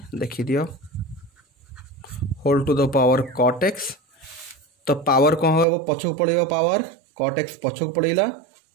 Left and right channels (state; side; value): drops out; left; at 5.7 s